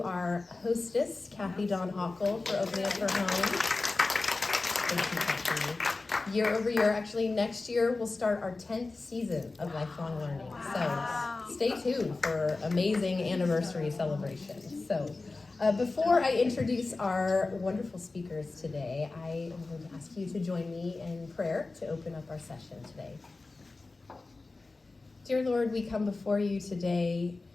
our hostess, Kathy Dawn Hockle, for opening up her home. Thank you, Kathy. Year over year, actually next year, we'll start our 10th season of Lifelong Learning. So stay tuned for amazing anniversary celebrations. So before I introduce our wonderful speakers today, I am going to ask you to join me in prayer to open up our session today. Dear Lord, we come before you today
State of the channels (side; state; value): right; quieter; 3.5 dB